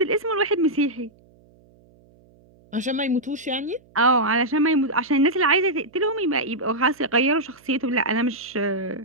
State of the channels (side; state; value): right; noise; hum, 30 dB below the sound